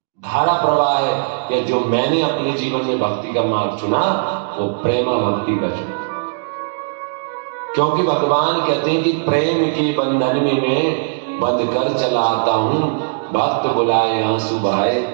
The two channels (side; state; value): left; silent; digital silence